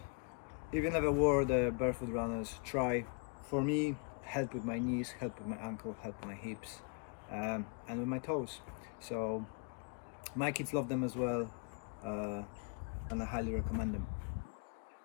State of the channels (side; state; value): right; quieter; 36.8 dB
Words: if you never wore the barefoot runners, try. For me, help with my knees, help with my ankle, help with my hips, and with my toes. So my kids love them as well, and I highly recommend them.